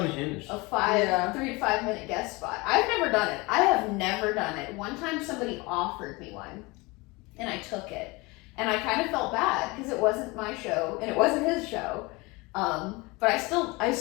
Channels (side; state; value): right; quieter; 24.7 dB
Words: unhinged. a 3 to 5 minute guest spot. I've never done it. I have never done it. One time somebody offered me one and I took it. And I kind of felt bad because it wasn't my show and it wasn't his show. but I